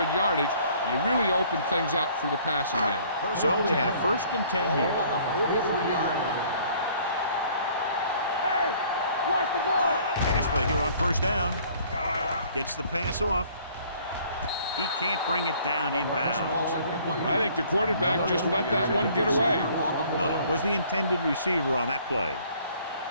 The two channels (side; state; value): both; inverted; correlation -0.57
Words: yardage, you really open things up for the passing game. So they have first and 10 here. On the 43-yard line. Hey, watch the ball. Pass play here on first down. Gets the pass off. He can't bring it down inbounds. I think the quarterback just let that one get away. No, it was the intended receiver on that play.